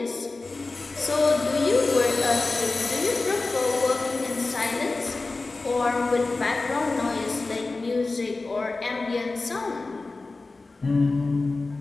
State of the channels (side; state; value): right; quieter; 3.5 dB